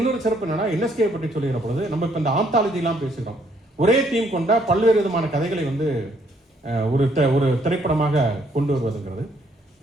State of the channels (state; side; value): normal; both; correlation 0.68